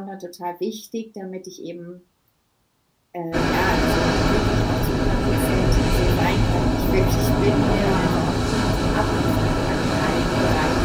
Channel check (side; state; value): both; identical; correlation 1.00